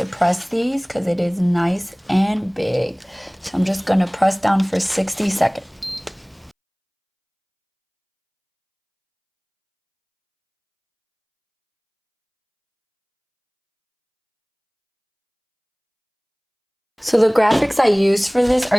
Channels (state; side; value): identical; both; correlation 1.00